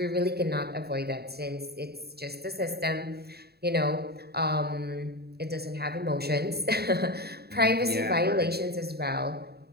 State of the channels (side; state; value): left; late; 0.46 ms